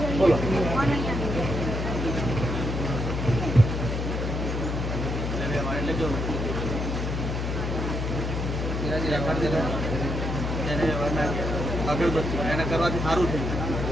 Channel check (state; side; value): noise; left; hum, 2 dB below the sound